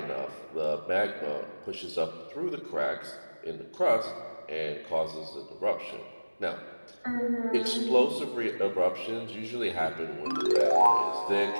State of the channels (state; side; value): inverted; both; correlation -1.00